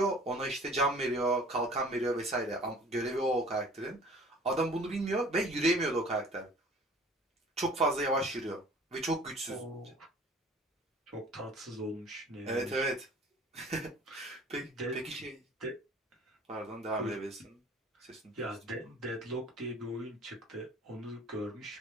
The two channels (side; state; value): both; normal; correlation 0.48